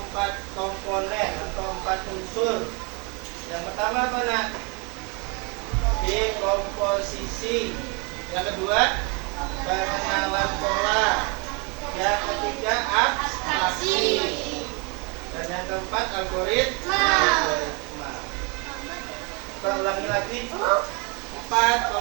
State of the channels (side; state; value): left; quieter; 31.7 dB